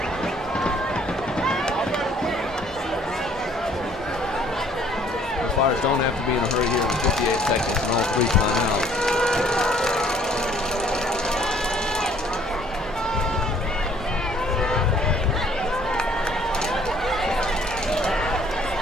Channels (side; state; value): both; normal; correlation 0.59